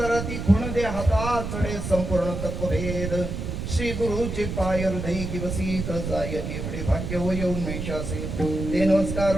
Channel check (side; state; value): right; noise; rumble, 5 dB below the sound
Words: खुण दे हाता चढे संपूर्ण तत्वभेद श्री गुरुचे पाय हृदय किवसीत जाय एवढे भाग्य होय उन्मेषासे ते